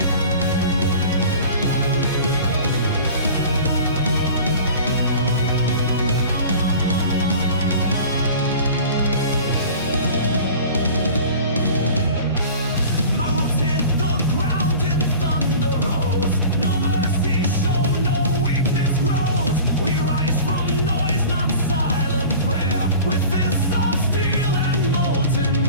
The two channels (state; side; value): inverted; both; correlation -0.40